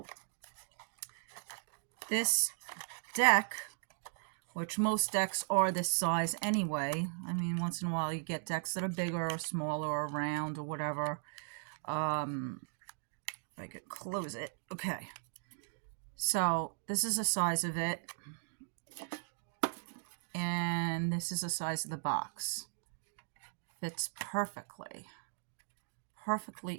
this deck, which most decks are this size anyway. I mean, once in a while you get decks that are bigger or smaller or round or whatever. If I could close it. Okay. So this is the size of it. And this is the size of the box. Fits perfectly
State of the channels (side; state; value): left; silent; digital silence